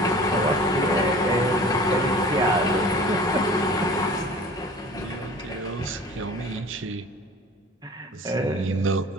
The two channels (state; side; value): normal; both; correlation 0.43